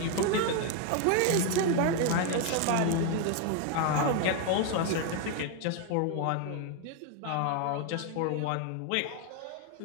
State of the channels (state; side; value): different; both; correlation 0.01